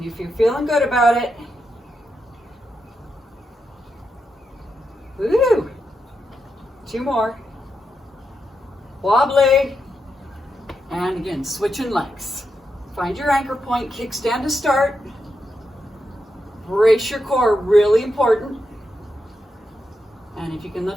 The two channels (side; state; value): both; normal; correlation 0.85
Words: if you're feeling good about it, woo! 2 more. Wobbly. And again, switching legs. Find your anchor point, kickstand to start. Brace your core, really important. And if you can